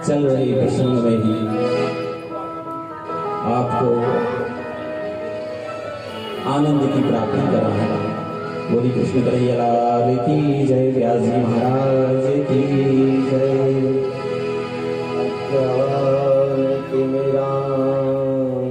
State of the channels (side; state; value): both; identical; correlation 1.00